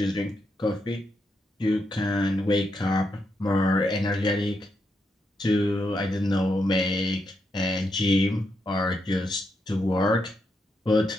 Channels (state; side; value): normal; both; correlation 0.82